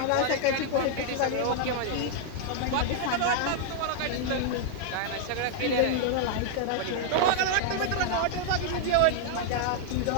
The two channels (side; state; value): both; different; correlation -0.01